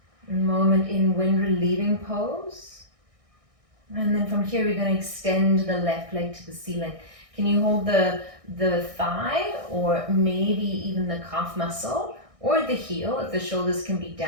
Moment in wind relieving pose. And then from here, we're going to extend the left leg to the ceiling. Can you hold the thigh or maybe even the calf muscle? Or the heel, if the shoulders can be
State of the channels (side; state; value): left; late; 1.6 ms